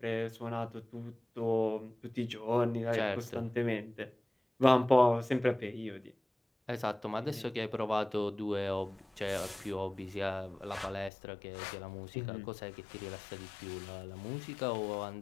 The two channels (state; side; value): drops out; right; at 11.1 s